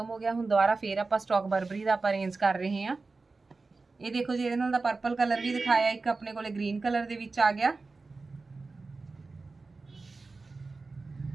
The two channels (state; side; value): quieter; left; 3.9 dB